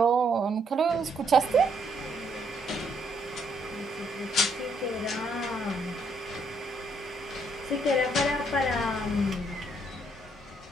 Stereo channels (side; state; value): both; normal; correlation 0.71